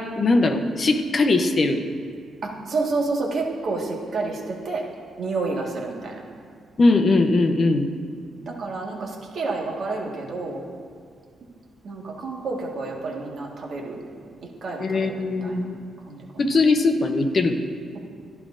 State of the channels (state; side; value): normal; both; correlation 0.83